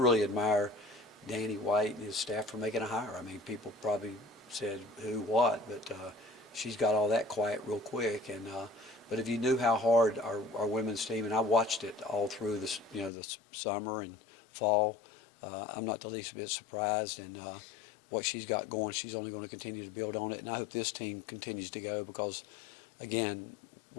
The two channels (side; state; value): right; drops out; at 13.1 s